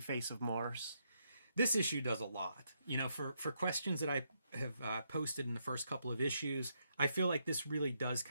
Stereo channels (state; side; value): inverted; both; correlation -0.78